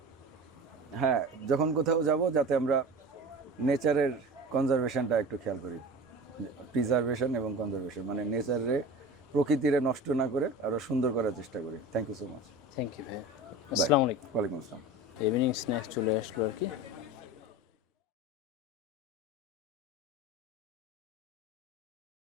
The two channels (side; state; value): both; normal; correlation 0.34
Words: কোথাও যাব, যাতে আমরা নেচারের কনজারভেশনটা একটু খেয়াল করি। প্রিজারভেশন এবং কনজারভেশন, মানে নেচারে, প্রকৃতিরে নষ্ট না করে আরও সুন্দর করার চেষ্টা করি। Thank you so much. Thank you ভাই, আসসালামু আলাইকুম। ওয়ালাইকুম আসসালাম। ইভিনিং স্ন্যাক্স চলে আসলো আর কি।